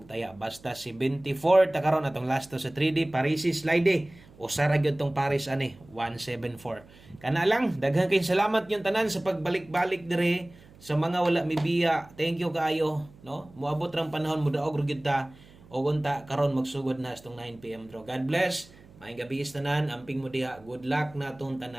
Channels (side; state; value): right; noise; hum, 24 dB below the sound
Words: taya basta si 24 ta karon atong last to sa 3D Parisi slide usa ra gyud tong Paris ani 174 kana lang daghan kay salamat yung tanan sa pagbalik-balik dire sa mga wala mibiya thank you kaayo no moabot rang panahon mo daog ra gyud ta o unta karon magsugod na sa 9 PM draw. God bless. Maayong gabi is tanan, amping mo diha. Good luck na atong